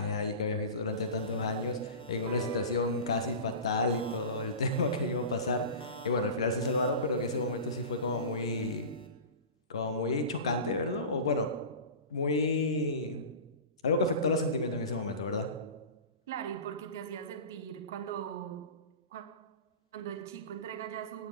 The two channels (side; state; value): both; inverted; correlation -0.32